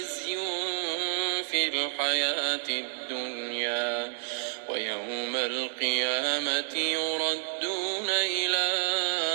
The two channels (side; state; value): left; silent; 58 dB below the other